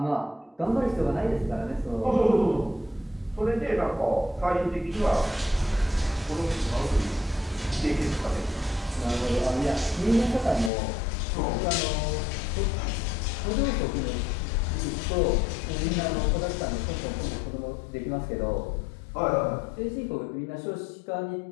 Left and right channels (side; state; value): right; drops out; at 10.7 s